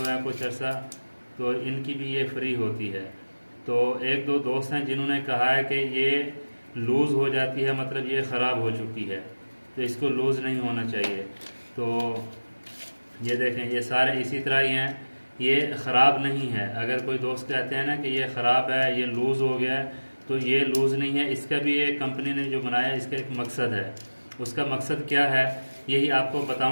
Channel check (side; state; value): both; inverted; correlation -1.00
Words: हैं कुछ अर्सा, तो इनकी भी ये फ्री होती है। तो एक दो दोस्त हैं जिन्होंने कहा है कि ये लूज़ हो जाती है, मतलब ये ख़राब हो चुकी है, तो इसको लूज़ नहीं होना चाहिए। तो ये देखें, ये सारे इसी तरह ही हैं, ये ख़राब नहीं है। अगर कोई दोस्त कहते हैं ना कि ये ख़राब है, ये लूज़ हो गया है, तो ये लूज़ नहीं है। इसका भी ये कंपनी ने जो बनाया इसका एक मकसद है। उसका मकसद क्या है यही आपको